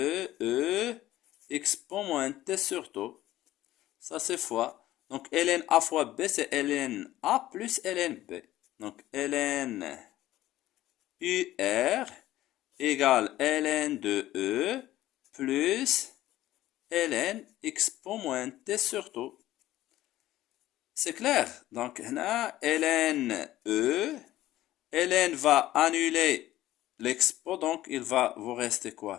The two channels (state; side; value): quieter; right; 14.8 dB